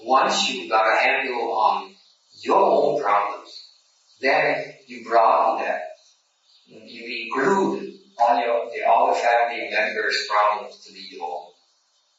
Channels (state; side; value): identical; both; correlation 1.00